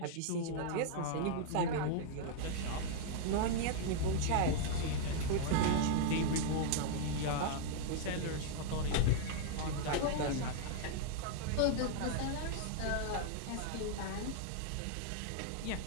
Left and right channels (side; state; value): both; different; correlation -0.01